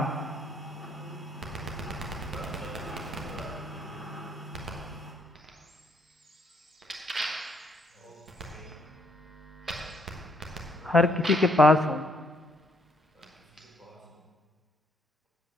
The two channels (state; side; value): normal; both; correlation 0.70